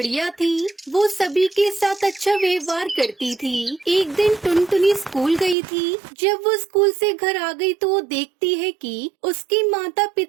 थी। वो सभी के साथ अच्छा व्यवहार करती थी। एक दिन टुनटुनी स्कूल गई थी। जब वो स्कूल से घर आ गई तो वो देखती है कि उसके माता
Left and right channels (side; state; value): left; drops out; at 5.6 s